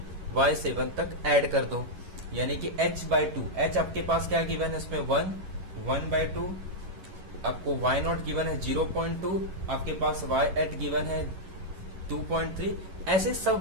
y7 तक ऐड कर दो, यानी कि h/2, h आपके पास क्या गिवन है इसमें 1/2, आपको y0 गिवन है 0.2, आपके पास y8 गिवन है 2.3, ऐसे सब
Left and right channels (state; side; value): late; left; 11 ms